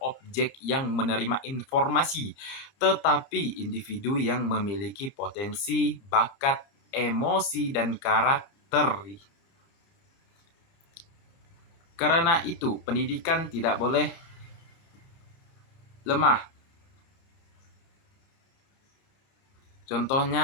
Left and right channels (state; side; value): late; right; 30 ms